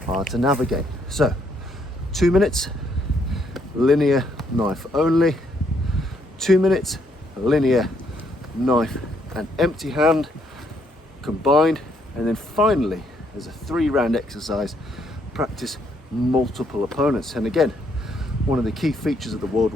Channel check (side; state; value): both; normal; correlation 0.71